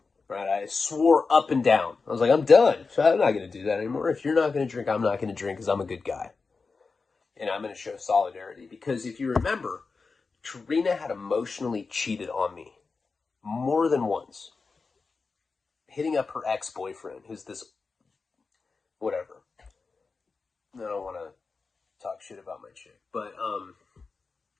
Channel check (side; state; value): right; quieter; 4.4 dB